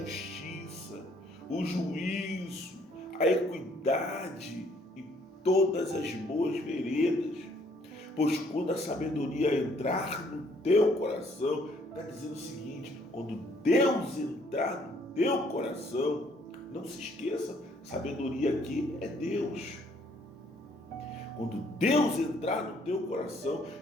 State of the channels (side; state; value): both; normal; correlation 0.64